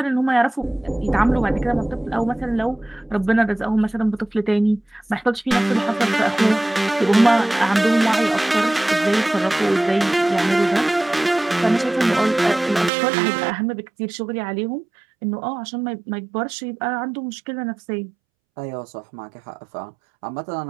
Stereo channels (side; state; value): left; drops out; at 12.9 s